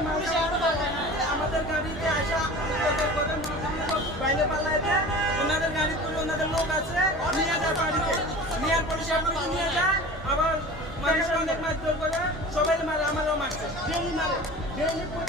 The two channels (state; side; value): normal; both; correlation 0.37